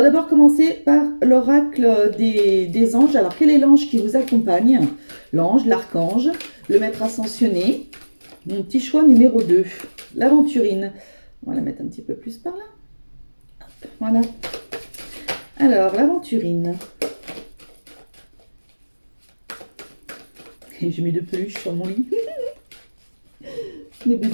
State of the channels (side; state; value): both; inverted; correlation -1.00